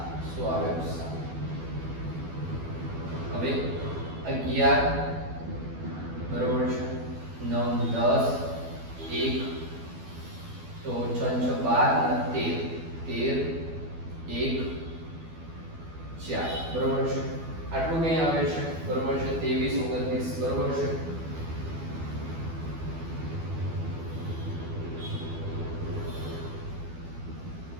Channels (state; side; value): late; left; 12 ms